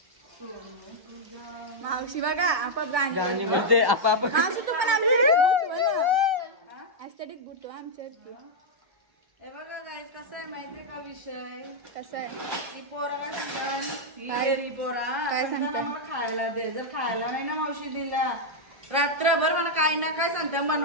मावशी बघा आपाप गाणी म्हणजे आपाप. मावशी तू पण ऍस्थेटिक बुटो आमच्या. हे बघा गाईस कसं आहे माहितीये का विषय? कसं आहे ही पोरा काय सांगतात? ही पोरा काय सांगतात? मला खायला दे. जर खायला नाही ना मावशी दिला रात्रभर मला काही ना काय सांगता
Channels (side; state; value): left; late; 1.1 ms